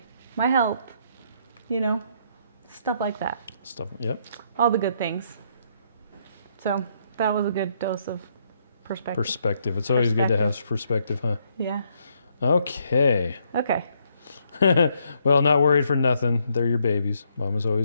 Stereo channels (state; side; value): inverted; both; correlation -0.72